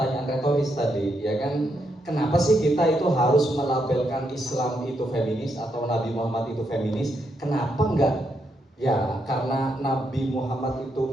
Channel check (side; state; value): both; normal; correlation 0.79